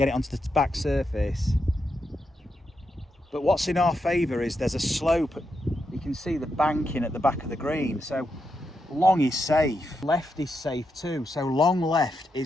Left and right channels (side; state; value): both; normal; correlation 0.84